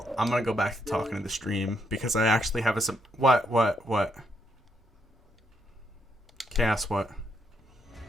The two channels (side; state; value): both; normal; correlation 0.76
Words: I'm gonna go back to talking to the stream, because I actually have what? Chaos, what?